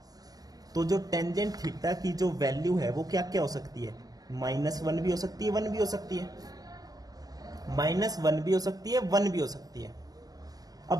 तो जो टेंजेंट थीटा की जो वैल्यू है वो क्या क्या हो सकती है, -1 भी हो सकती है, 1 भी हो सकती है, -1 भी हो सकती है, 1 भी हो सकती है।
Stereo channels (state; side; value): late; left; 0.18 ms